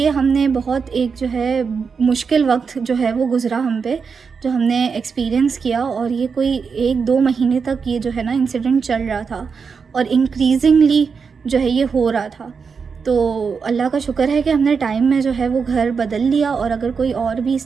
हमने बहुत एक जो है मुश्किल वक्त जो है वो गुज़रा हम पे, जो हमने एक्सपीरियंस किया, और ये कोई 1-2 महीने तक ये जो है ना इंसिडेंट चल रहा था, और इंक्रीजिंगली जो है ये हो रहा था। तो अल्लाह का शुक्र है कि हमने टाइम में जो है वो घर बदल लिया, और अगर कोई और भी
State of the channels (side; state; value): left; quieter; 5.6 dB